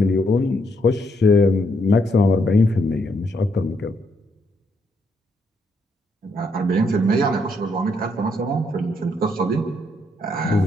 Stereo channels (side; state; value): both; normal; correlation 0.75